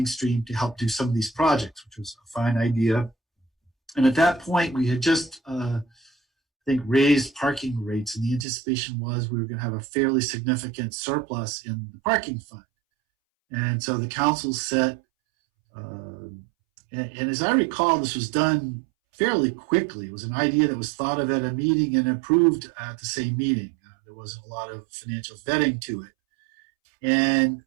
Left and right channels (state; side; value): drops out; left; at 8.5 s